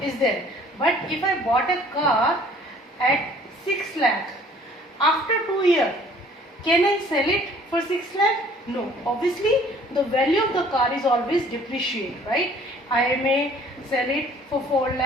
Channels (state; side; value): normal; both; correlation 0.55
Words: is there. But if I bought a car at 6 lakh, after 2 years, can I sell it for 6 lakh? No. Obviously, the value of the car is always depreciate, right? I may sell it for 4